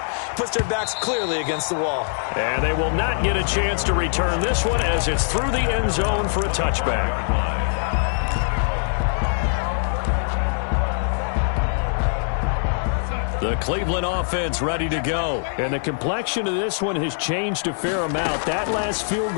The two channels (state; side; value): silent; right; 57 dB below the other